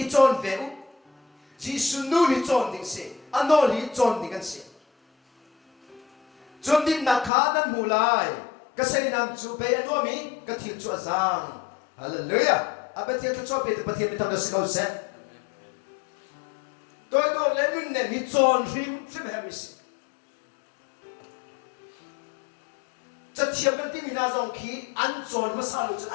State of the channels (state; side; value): drops out; right; at 7.3 s